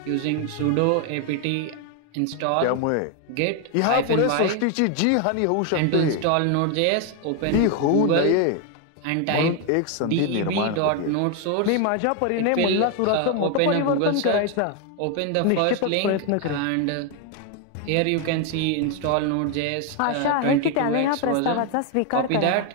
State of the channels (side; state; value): both; different; correlation 0.01